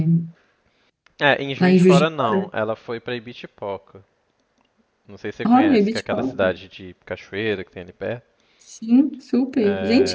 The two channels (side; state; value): both; identical; correlation 1.00